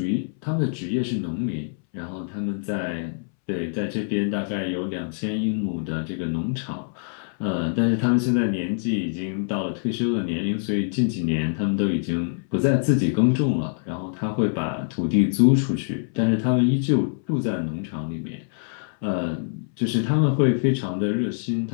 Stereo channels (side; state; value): right; silent; 62 dB below the other